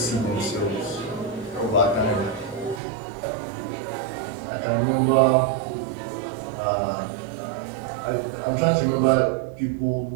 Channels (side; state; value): left; drops out; at 2.8 s